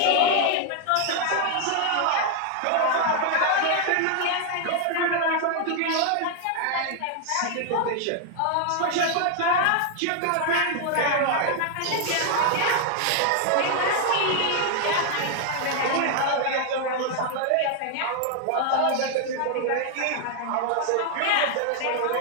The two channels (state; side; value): different; both; correlation 0.00